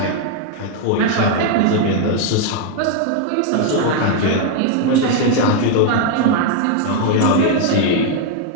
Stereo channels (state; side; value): different; both; correlation 0.00